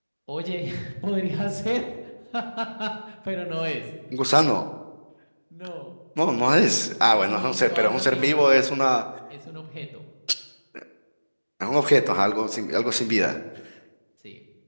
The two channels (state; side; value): inverted; both; correlation -1.00